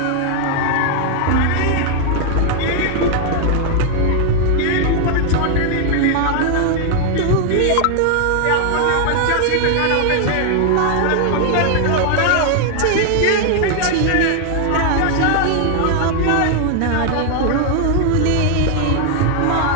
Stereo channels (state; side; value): different; both; correlation 0.00